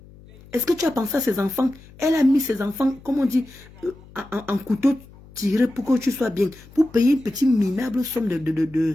Est-ce que tu as pensé à ses enfants? Elle a mis ses enfants, comme on dit, en couteau tiré pour que tu sois bien. Pour payer une petite minable somme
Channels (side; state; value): left; noise; hum, 22 dB below the sound